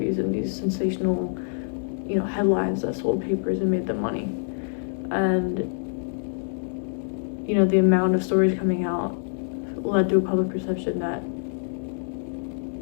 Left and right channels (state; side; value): silent; right; digital silence